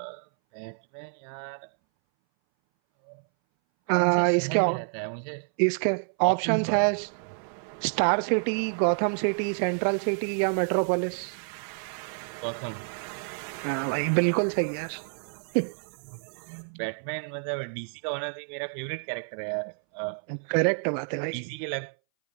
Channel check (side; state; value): left; silent; 59 dB below the other